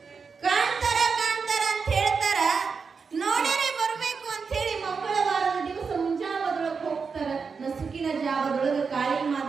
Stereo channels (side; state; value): left; quieter; 5.3 dB